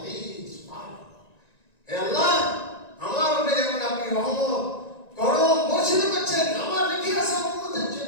সুবহানাল্লাহ। হে আল্লাহ, আমার উপরে যেমন আপনি রহমত করম বর্ষিত করছেন, আমার রেখে আসা উম্মতের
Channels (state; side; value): late; right; 1.9 ms